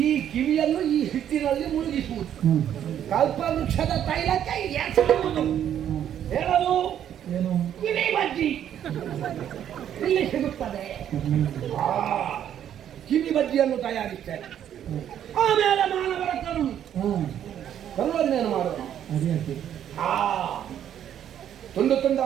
ಈ ಕಿವಿಯನ್ನು ಈ ಹಿಟ್ಟಿನಲ್ಲಿ ಮುಳುಗಿಸುವುದು. ಹ್ಮ್. ಕಲ್ಪವೃಕ್ಷದ ತೈಲಕ್ಕೆ ಎಸೆಯುವುದು. ಹೇಳಲು ಏನು? ಕಿವಿ ಬಜ್ಜಿ ಇಲ್ಲಿ ಸಿಗುತ್ತದೆ. ಆ ಕಿವಿ ಬಜ್ಜಿಯನ್ನು ತಯಾರಿಸ್ತೇನೆ. ಆಮೇಲೆ ಮಾನವರ ಕರುಳನ್ನೇನು ಮಾಡೋದು? ಅದೇ ಅದೇ. ಆ ತುಂಡು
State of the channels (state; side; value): quieter; left; 10.1 dB